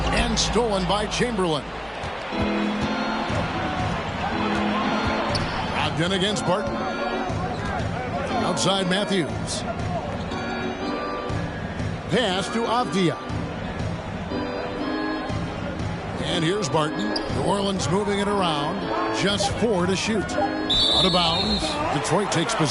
And stolen by Chamberlain. Brogdon against Barton. Outside Matthews. Pass to Avdia. And here's Barton. New Orleans moving it around. Just 4 to shoot. Out of bounds. Detroit takes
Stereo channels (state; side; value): identical; both; correlation 1.00